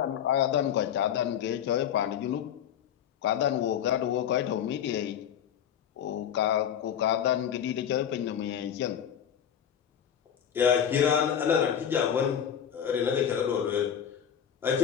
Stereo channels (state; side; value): quieter; right; 9.0 dB